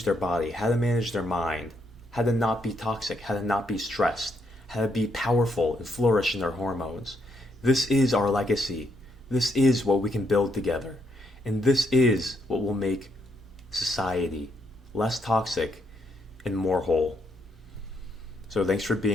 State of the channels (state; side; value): normal; both; correlation 0.76